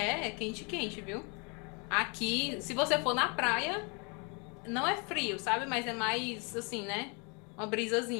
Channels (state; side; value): quieter; right; 33.4 dB